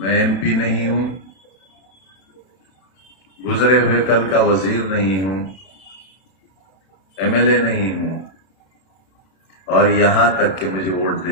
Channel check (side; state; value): right; late; 32 ms